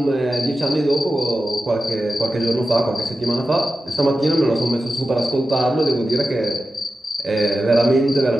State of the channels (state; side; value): normal; both; correlation 0.92